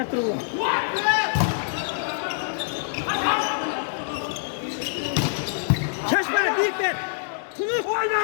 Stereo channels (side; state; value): right; silent; digital silence